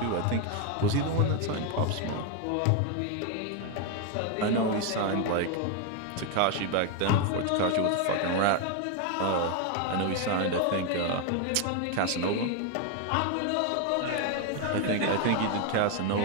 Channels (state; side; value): different; both; correlation 0.01